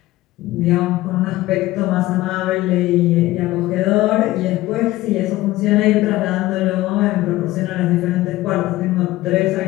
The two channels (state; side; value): quieter; right; 17.2 dB